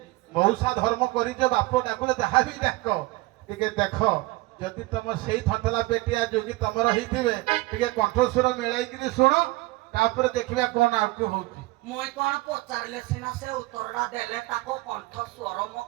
ମଉସା ଧର୍ମ କରିଛ ବାପ ଡାକୁଲେ ଯାହା ବି ଡାକ ଟିକେ ଦେଖ ଯଦି ତମ ସେଇ ଥନ୍ତଲା ପେଟିଆ ଯୋଗୀ ତମର ହେଇଥିବେ ଟିକେ କଣ୍ଠସ୍ୱର ମିଳାଇକିରି ଶୁଣ ତାପରେ ଦେଖିବା କଣ ଆଗକୁ ହଉଛି ମୁଇଁ କଣ ପଚାରିଲେ ସିନା ସେ ଉତ୍ତରଟା ଦେଲେ ତାକୁ କଣ୍ଠ ସ୍ୱର ମୋ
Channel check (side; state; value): left; quieter; 20.9 dB